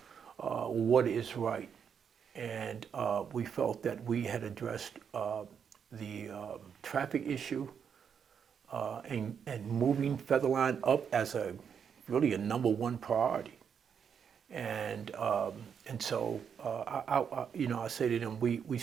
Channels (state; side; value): quieter; left; 7.3 dB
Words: what is right. And we felt that we had addressed the traffic issue and moving Featherline up as really a number one priority. And so I say to them, we